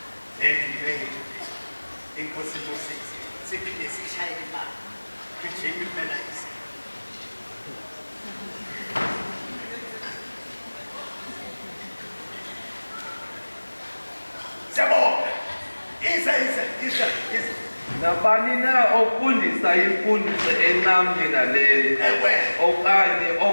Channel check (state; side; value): inverted; both; correlation -1.00